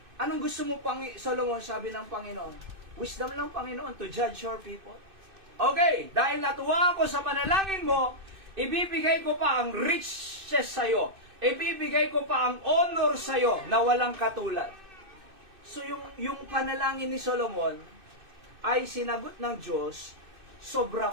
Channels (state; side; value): late; left; 2.6 ms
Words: Anong gusto mo, Solomon, sabi ng Panginoon? Wisdom lang, Panginoon, to judge your people. Okay, dahil natuwa ako sa panalangin mo, ibibigay ko pa ang riches sa'yo. Ibibigay ko pa ang honor sa'yo na walang katulad. So yung panalangin ni Solomon ay sinagot ng Diyos, sobra